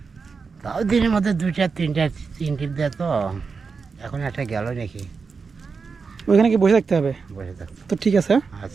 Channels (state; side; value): quieter; left; 5.0 dB